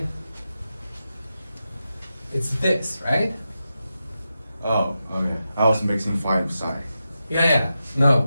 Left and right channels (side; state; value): both; inverted; correlation -0.90